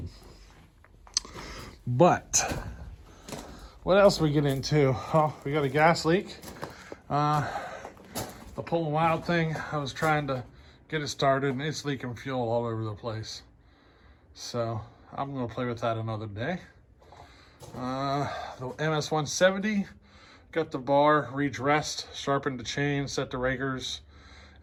But what else we get into? Oh, we got a gas leak. The Pulling Wild thing, I was trying to get it started, and it's leaking fuel all over the place. So I'm going to play with that another day. The MS-170, got the bar redressed, sharpened the chain, set the rakers,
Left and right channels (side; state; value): both; identical; correlation 1.00